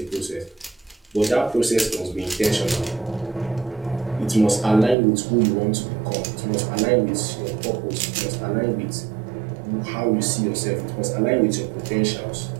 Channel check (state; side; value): drops out; left; at 5.0 s